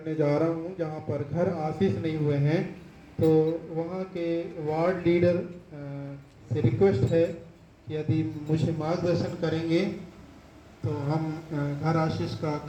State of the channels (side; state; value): both; identical; correlation 1.00